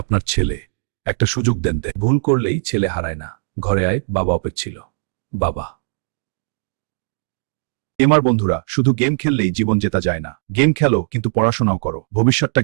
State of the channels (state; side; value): silent; left; digital silence